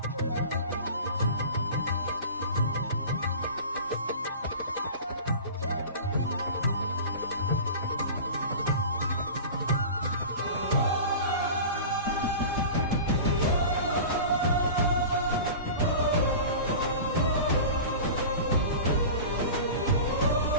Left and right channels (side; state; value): both; inverted; correlation -0.35